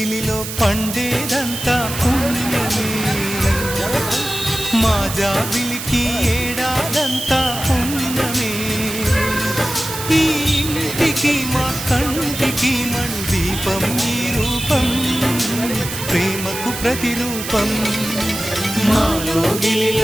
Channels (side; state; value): right; noise; hiss, 7 dB below the sound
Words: పండేదంతా పుణ్యమే మా జాబిలికి ఏడాదంతా పుణ్యమే ఈ ఇంటికి మా కంటికి మణి దీపం ఈ రూపం ప్రేమకు ప్రతిరూపం మాలో